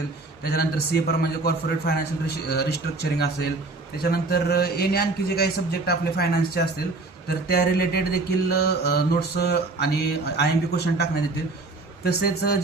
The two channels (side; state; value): left; quieter; 3.3 dB